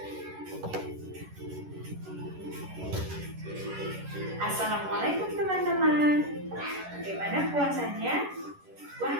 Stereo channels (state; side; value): late; left; 11 ms